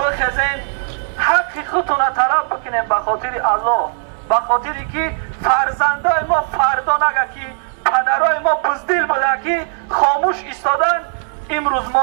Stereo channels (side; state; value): left; silent; digital silence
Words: حق خودتون طلب بکنیم به خاطر الله، به خاطری که فرزندای ما فردا نگه که پدرای ما بزدل بوده که خاموش ایستادن، امروز